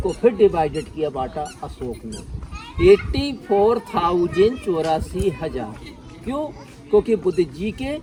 फिर डिवाइडेड किया, बांटा अशोक ने। 84,000 क्यों? क्योंकि बुद्ध जी के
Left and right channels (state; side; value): identical; both; correlation 1.00